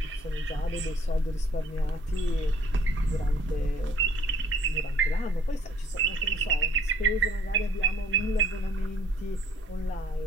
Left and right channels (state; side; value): normal; both; correlation 0.59